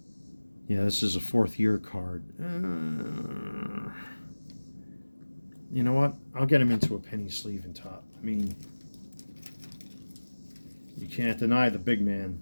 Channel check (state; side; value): inverted; both; correlation -1.00